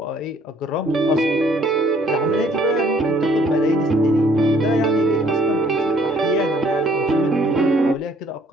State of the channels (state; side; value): normal; both; correlation 0.61